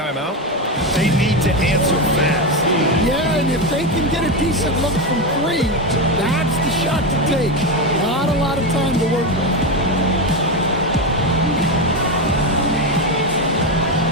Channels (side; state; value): both; normal; correlation 0.13